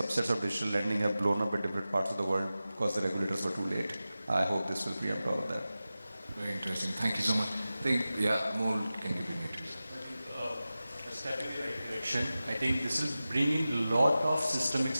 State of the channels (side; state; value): both; inverted; correlation -0.95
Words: of digital lending have blown up in different parts of the world because the regulators were too late. I hope this will preempt all of that. Very interesting. Thank you so much. I think, Amol can give you a step in the right direction. I think this will bring in a lot of systemic